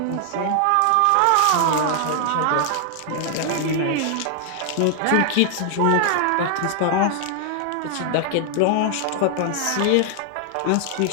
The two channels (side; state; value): both; different; correlation 0.00